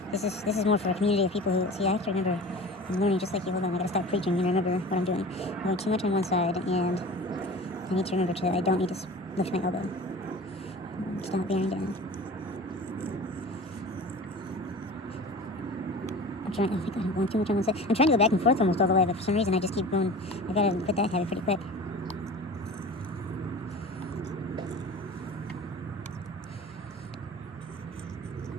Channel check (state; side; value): normal; both; correlation 0.37